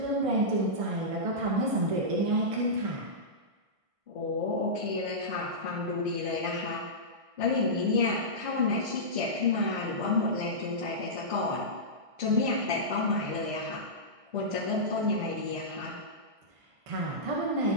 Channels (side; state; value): left; late; 1.5 ms